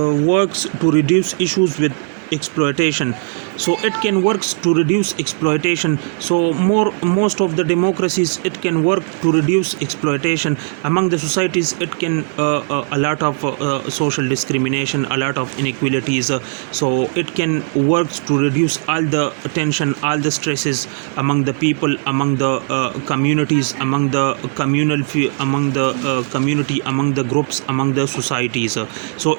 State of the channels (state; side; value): silent; left; 55 dB below the other